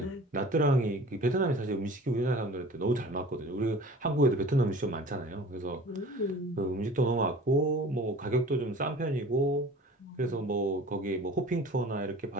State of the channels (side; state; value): both; normal; correlation 0.43